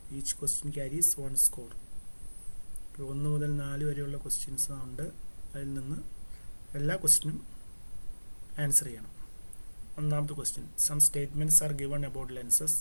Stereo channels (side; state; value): both; inverted; correlation -1.00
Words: Each question carries 1 score. 1 മുതൽ 4 വരെയുള്ള questions ഉണ്ട്. അതിൽ നിന്ന് എല്ലാ ക്വസ്റ്റ്യനും ആൻസർ ചെയ്യണം. ഒന്നാമത്തെ question, some statements are given about lenses.